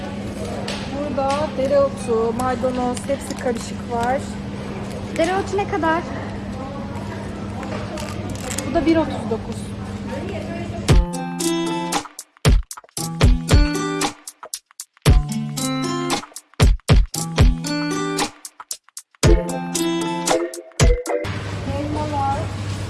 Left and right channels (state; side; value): identical; both; correlation 1.00